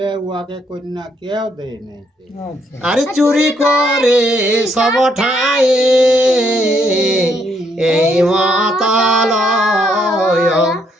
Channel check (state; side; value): normal; both; correlation 0.73